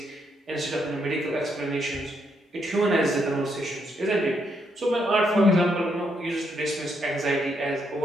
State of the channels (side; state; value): both; normal; correlation 0.77